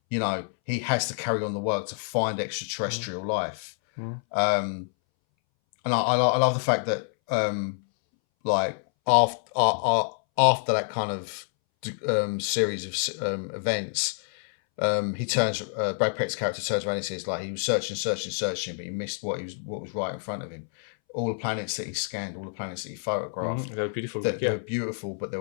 you know, he has to carry on the work to find extraterrestrial life. And I love the fact that like after that kind of series of events, Brad Pitt's character turns around and says, like, he was searching, but he missed what was right in front of him. All the planets that he scanned, all the planets that he photographed, they were beautiful. They were beautiful, but they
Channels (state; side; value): silent; right; 60 dB below the other